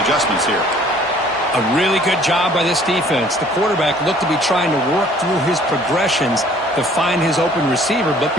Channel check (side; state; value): both; normal; correlation 0.56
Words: adjustments here. A really good job by this defense. The quarterback looked to be trying to work through his progressions to find his open receiver, but